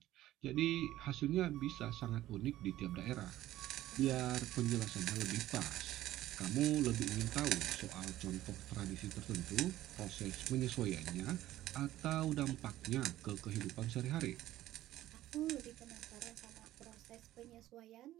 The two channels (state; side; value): quieter; left; 14.5 dB